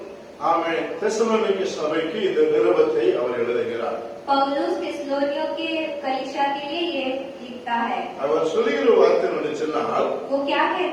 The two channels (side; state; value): both; identical; correlation 1.00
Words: ஆமென் தெசலோனிக்க சபைக்கு இந்த நிருபத்தை அவர் எழுதுகிறார். पौलुस थिस्सलुनियों के कलीसिया के लिए ये लिखता है. அவர் சொல்லுகிற வார்த்தை என்ன சொன்னால் वो क्या